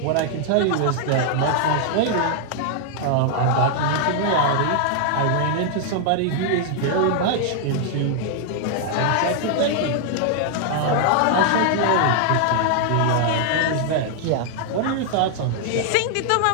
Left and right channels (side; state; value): both; different; correlation 0.00